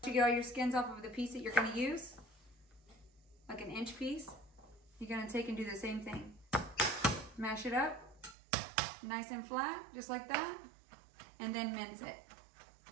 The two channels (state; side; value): drops out; left; at 8.3 s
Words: To get all your skins off of the piece that you're gonna use, like an inch piece, you're gonna take and do the same thing. Mash it up, nice and flat, just like that, and then mince it.